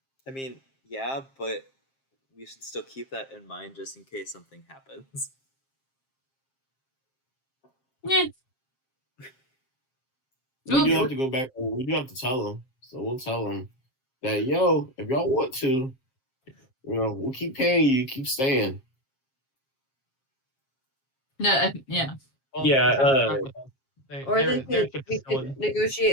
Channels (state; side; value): late; right; 7.5 ms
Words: I mean, yeah, but we should still keep that in mind just in case something happens. Yeah. We do have to go back. We do have to tell them, so we'll tell them that yo, if y'all want to, we'll keep paying you, keep staying. No, yeah. Well, Yeah, if they're stuck with us, Or their we ship is could still in.